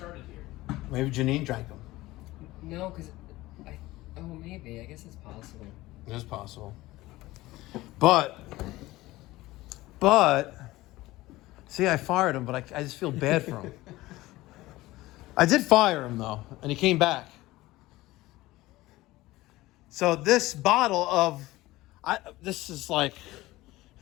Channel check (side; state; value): right; quieter; 18.3 dB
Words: here. Maybe Janine drank them. No, because oh, maybe. I guess it's possible. It is possible. But, see, I fired him, but I just feel bad for him. I did fire him, though, and he came back. So this bottle of, this is like,